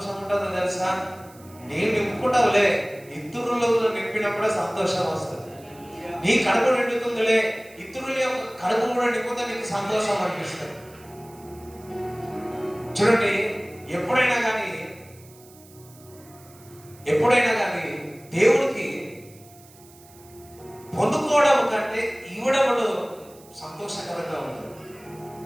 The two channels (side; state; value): right; noise; hiss, 24 dB below the sound